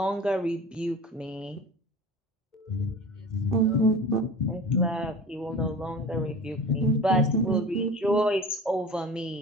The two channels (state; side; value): normal; both; correlation 0.37